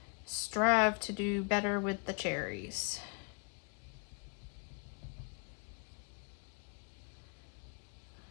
strive to do better with the cherries.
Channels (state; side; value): quieter; right; 36.7 dB